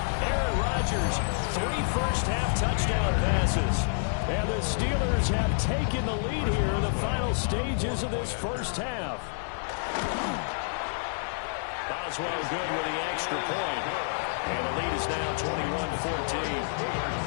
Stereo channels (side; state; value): right; silent; digital silence